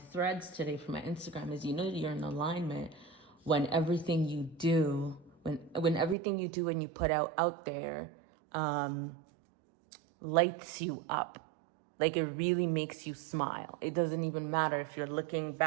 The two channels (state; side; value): drops out; left; at 6.2 s